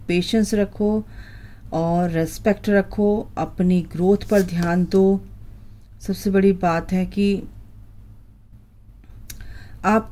पेशेंस रखो और रेस्पेक्ट रखो, अपनी ग्रोथ पर ध्यान दो। सबसे बड़ी बात है कि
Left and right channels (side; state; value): both; identical; correlation 1.00